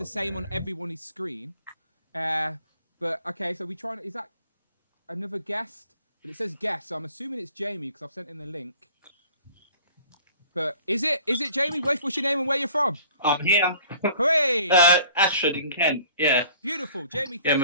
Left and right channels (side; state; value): both; inverted; correlation -0.51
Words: same on everyone's screen. But okay, so is that another guest? But it says guest, so I'm assuming it's Jamie because I've sent in the link. But is it Jamie? What's your name and where you're from? I'm here. Hooray! Ashford in Kent. Yeah. Beautiful, Jamie.